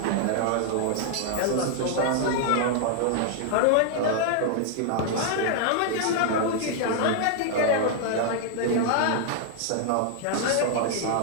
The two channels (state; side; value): different; both; correlation -0.01